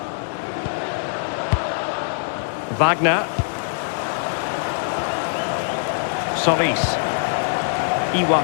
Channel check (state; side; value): silent; right; digital silence